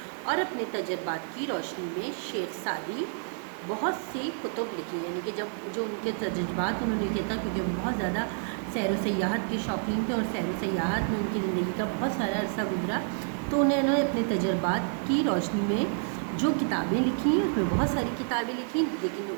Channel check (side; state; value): left; silent; 57 dB below the other